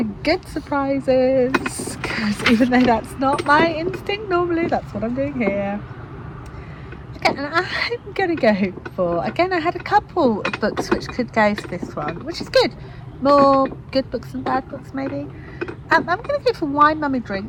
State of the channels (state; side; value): identical; both; correlation 1.00